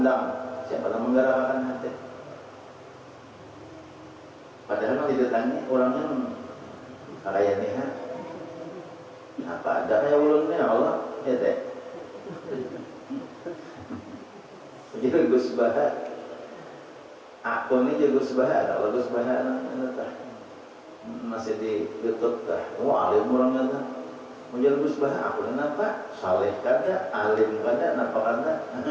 Siapa yang menggerakkan hati? Padahal kalau didatangi orangnya kayak nih, apa ada kayak ulunnya Allah, ya teh. Jadi Gus Baha, aku ini juga Gus Baha, kalau Gus Baha masih di YouTube dah. Wah, alim orangnya dah. Menjadi Gus Baha, aku kenapa? Saleh kada, alim kada, napa kada?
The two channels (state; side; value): identical; both; correlation 1.00